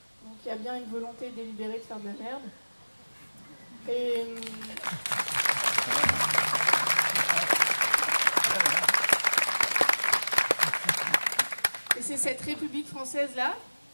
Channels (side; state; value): both; inverted; correlation -1.00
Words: Donc il y a bien une volonté délibérée de faire de la merde. Et c'est cette République française-là